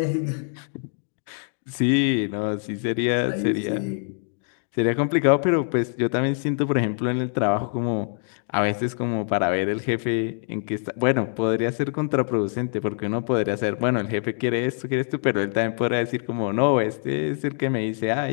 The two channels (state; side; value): silent; right; 62 dB below the other